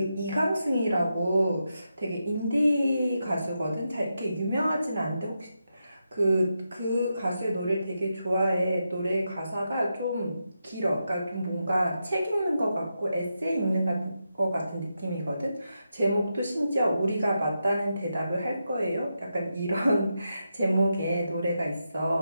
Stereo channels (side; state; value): both; inverted; correlation -0.86